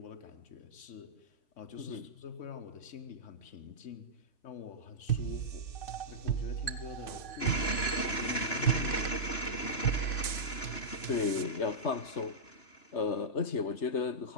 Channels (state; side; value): late; right; 2.9 ms